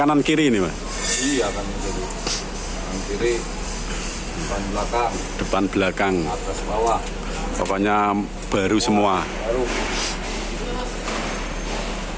kiri ini, Mas. Iya kan jadi kanan kiri, Depan belakang. atas bawah. Pokoknya baru semua. Baru.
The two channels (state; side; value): identical; both; correlation 1.00